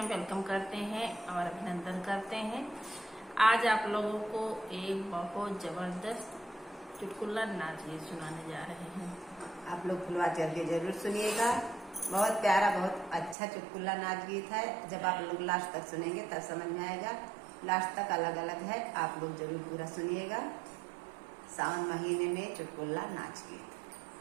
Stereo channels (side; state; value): left; drops out; at 13.4 s